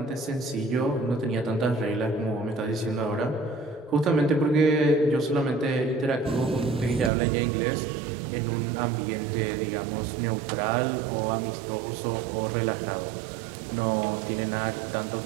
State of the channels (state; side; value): drops out; left; at 7.1 s